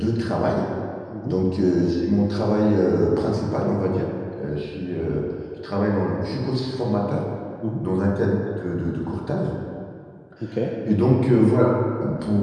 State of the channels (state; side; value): identical; both; correlation 1.00